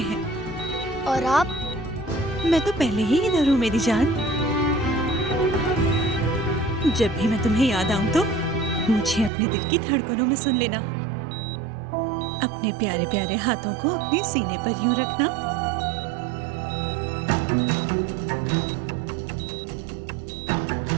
हैं। और आप? मैं तो पहले ही इधर हूँ मेरी जान। जब भी मैं तुम्हें याद आऊं तो मुझे अपने दिल की धड़कनों में सुन लेना। अपने प्यारे प्यारे हाथों को अपने सीने पर यूं रखना।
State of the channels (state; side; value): drops out; left; at 9.3 s